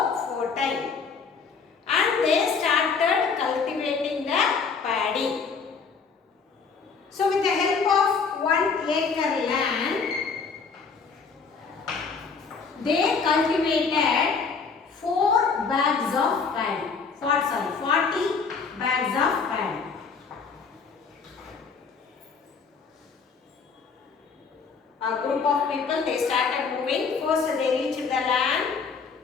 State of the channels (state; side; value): quieter; right; 5.3 dB